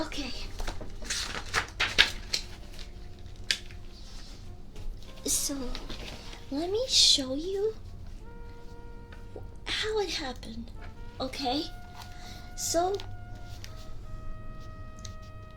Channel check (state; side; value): identical; both; correlation 1.00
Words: Okay. So, let me show you how it happened, okay? So,